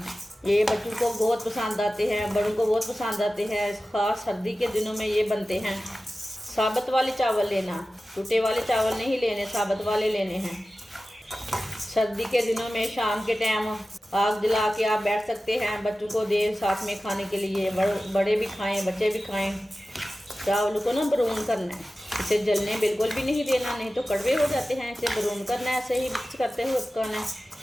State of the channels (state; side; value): normal; both; correlation 0.95